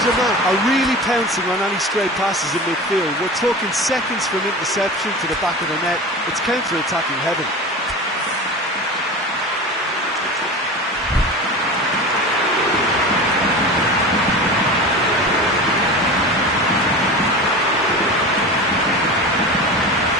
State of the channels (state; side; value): normal; both; correlation 0.31